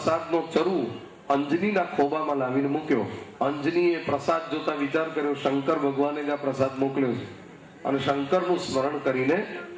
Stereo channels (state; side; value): identical; both; correlation 1.00